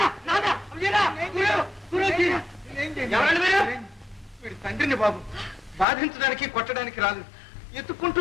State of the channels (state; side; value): drops out; right; at 5.9 s